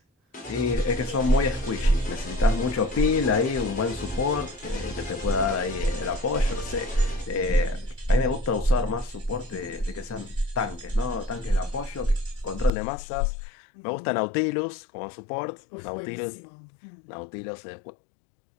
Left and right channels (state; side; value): drops out; right; at 12.7 s